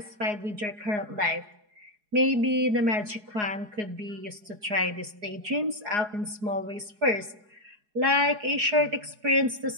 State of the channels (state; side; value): late; left; 4.8 ms